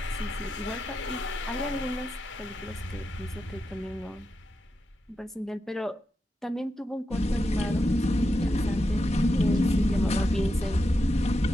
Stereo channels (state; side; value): normal; both; correlation 0.87